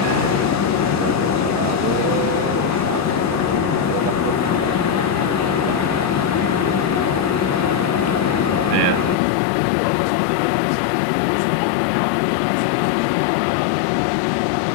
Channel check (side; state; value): right; drops out; at 9.2 s